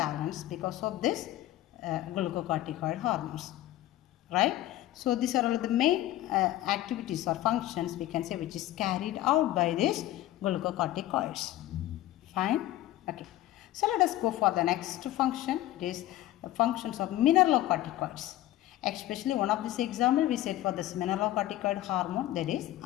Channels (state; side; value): quieter; right; 14.6 dB